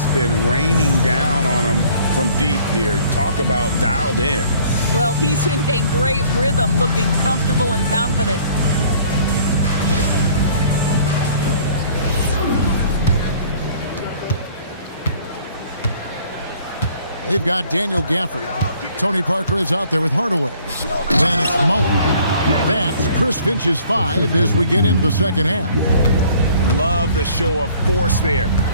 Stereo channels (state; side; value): inverted; both; correlation -0.56